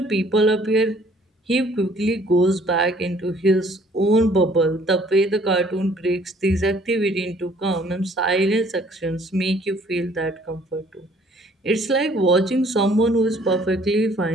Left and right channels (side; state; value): both; normal; correlation 0.59